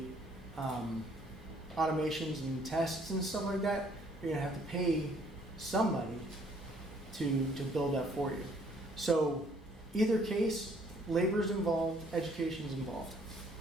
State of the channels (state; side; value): normal; both; correlation 0.63